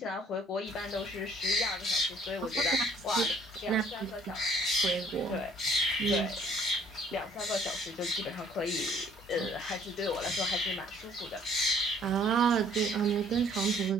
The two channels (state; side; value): normal; both; correlation 0.59